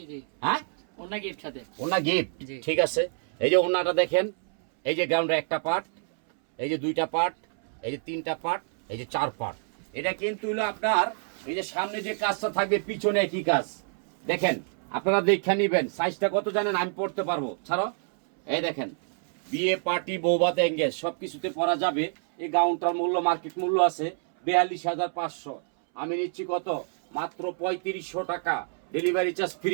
জি, হ্যাঁ, ওনা গিফট সাথে। ওনার গিফট, জি। ঠিক আছে। এই যে ওনাটা দেখেন, এই যে গাউনটা একটা পার্ট, এই যে 2টা পার্ট, এই যে 3টা পার্ট, এই যে 4 পার্ট। এটা কিন্তু হলো আপনার, এই যে সামনে যে কাজটা থাকবে, পিছনে একই কাজ। দেখেন আপনারা দেখে নিবেন, সাইজটা কত জানেন, আমি পড়তে পারবো। ছাড়ো, এই দেখেন বিয়ে পার্টি বৌভাত এঙ্গেজ সবকিছুতে পরা যাবে। এই গাউনটার মূল্য মার্কেট মূল্য আছে 42,500, আমি নিচ্ছি কত, মাত্র 3500 টাকা, ডেলিভারি চার্জ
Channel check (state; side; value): silent; left; 60 dB below the other